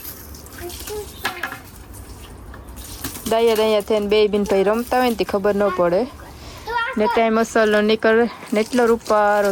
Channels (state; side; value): identical; both; correlation 1.00